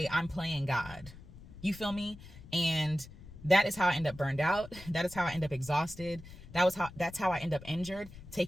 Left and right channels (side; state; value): left; noise; rumble, 17 dB below the sound